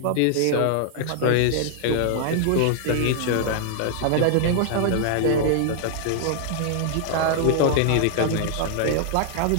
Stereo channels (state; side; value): different; both; correlation -0.01